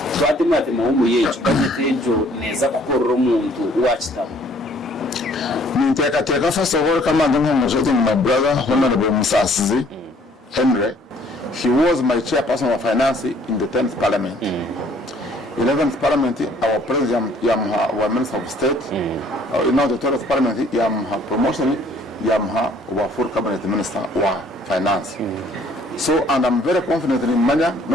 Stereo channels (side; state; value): both; normal; correlation 0.59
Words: Twatimate muhumuye cyukatejo neza kukorora umuntu wachitamo Ninteka first of all kama ndumujote my brother Honorable Musasizi Henry. He was my chairperson of finance in the 10th parliament. 11th parliament our president yamuha wa minister of state now the 12th parliament yamuha promotion yamuha wa full cabinet minister wa finance so and I'm very confident in manya